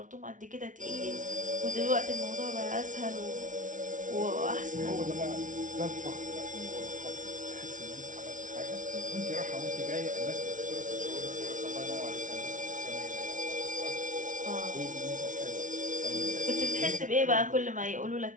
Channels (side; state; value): left; late; 0.37 ms